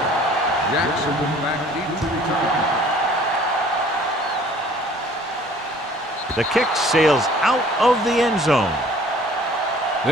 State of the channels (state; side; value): normal; both; correlation 0.53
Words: Jackson back deep to return. The kick sails out of the end zone.